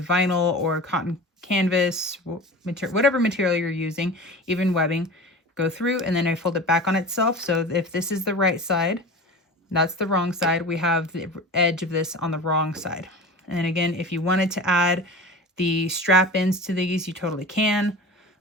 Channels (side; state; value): both; normal; correlation 0.34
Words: or cotton canvas, whatever material you're using, even webbing, go through, and then I fold it back on itself. So if this is the right side, that's the wrong side. We have the edge of this on the wrong side. And then again, if you wanted to add the strap ends to these, you totally can.